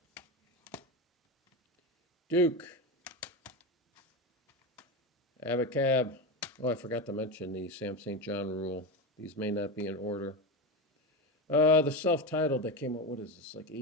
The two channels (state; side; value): normal; both; correlation 0.18